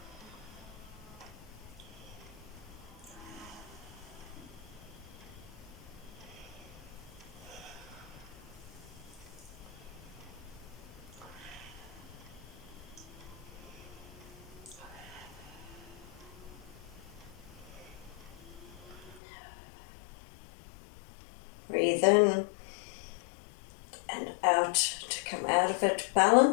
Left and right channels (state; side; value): drops out; right; at 19.2 s